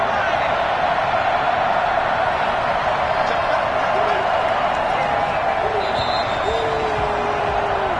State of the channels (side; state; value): both; identical; correlation 1.00